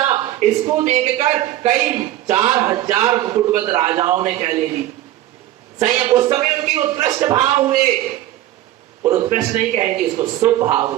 इसको देखकर कई 4000 मुकुटबद्ध राजाओं ने क्या ले ली? संयम। उस समय उनके उत्कृष्ट भाव हुए, और उत्कृष्ट नहीं कहेंगे इसको, शुभ भाव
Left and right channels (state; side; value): quieter; left; 14.0 dB